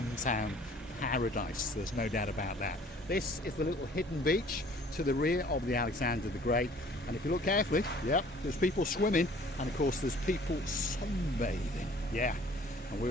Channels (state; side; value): normal; both; correlation 0.53